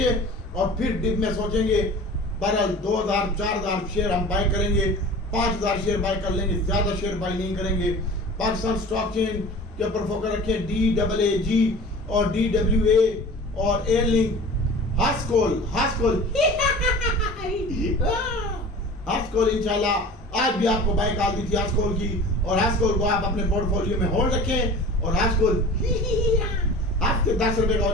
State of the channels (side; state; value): both; normal; correlation 0.40